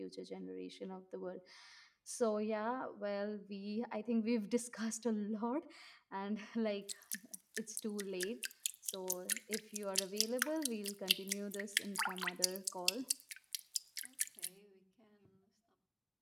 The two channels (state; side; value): identical; both; correlation 1.00